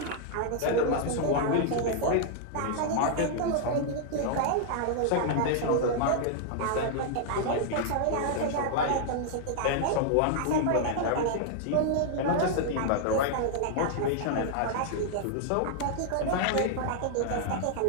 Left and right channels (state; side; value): different; both; correlation -0.01